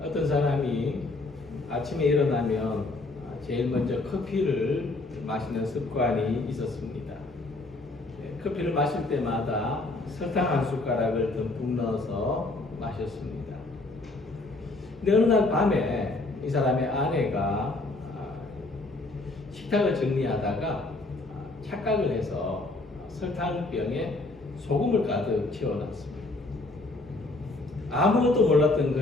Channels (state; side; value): quieter; right; 3.0 dB